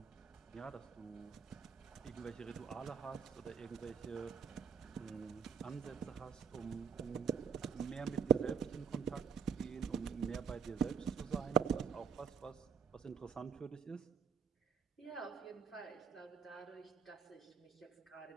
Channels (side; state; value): left; quieter; 6.4 dB